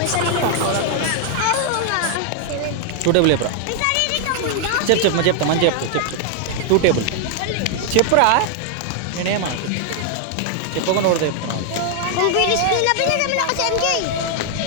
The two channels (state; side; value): different; both; correlation 0.00